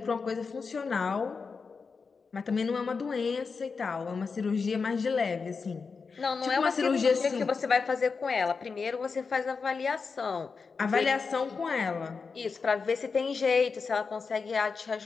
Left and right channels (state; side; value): quieter; right; 5.0 dB